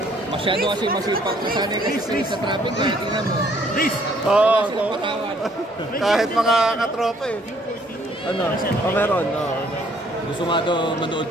Masyado kasi masipag. Nasanay kasi sa traffic light. Tingnan mo. Oo, Sila patawan. kahit mga katropa eh. Ano? O meron, no. Gusto nga daw manood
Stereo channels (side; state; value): both; normal; correlation 0.63